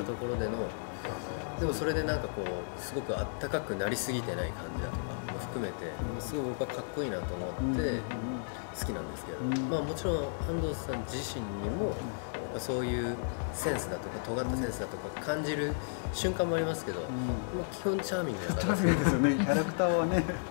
ところでの、でもそれでなんかすごくあったかくなりすぎてない感じだとかも含めてすごい僕はかっこいいなと思って好きなんですけど、もちろん安藤さん自身にもそういうセンスだとか尖ったセンスだとか感じる瞬間もありますけど、基本チャーミングな方ですよね。キャラクターはね。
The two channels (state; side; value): silent; right; 55 dB below the other